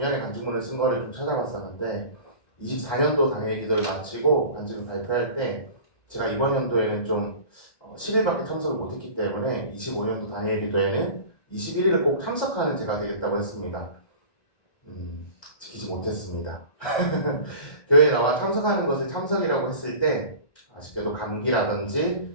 간증문을 쓴 거를 좀 찾아봤었는데 24년도 당일 기도를 마치고 간증을 발표할 때 제가 이번 연도에는 좀 10일밖에 참석을 못했기 때문에 25년도 당일 기도에는 21일을 꼭 참석하는 제가 되겠다고 했습니다. 지키지 못했습니다. 교회에 나와 참석하는 것을 참석이라고 했을 때 아쉽게도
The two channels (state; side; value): late; right; 1.2 ms